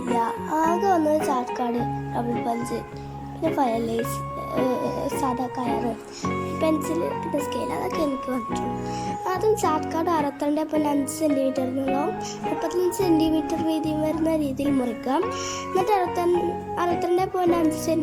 ആകെ വന്നത് ചാർട്ട് കാർഡ്, ഡബിൾ പഞ്ച്, പിന്നെ ഫയൽ ലേസ്, സാധാ കയറ്, പെൻസിൽ, പിന്നെ സ്കെയിൽ, അതൊക്കെ എനിക്ക് വന്നിട്ടുള്ളൂ. ആദ്യം ചാർട്ട് കാർഡ് 62.5 സെൻറ്റിമീറ്റർ നീളവും 35 സെൻറ്റിമീറ്റർ വീതിയും വരുന്ന രീതിയിൽ മുറിക്കാം. എന്നിട്ട് 62.5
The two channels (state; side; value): identical; both; correlation 1.00